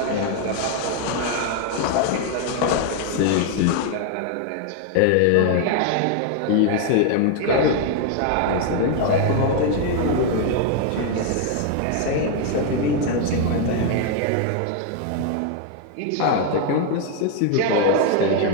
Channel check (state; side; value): different; both; correlation 0.00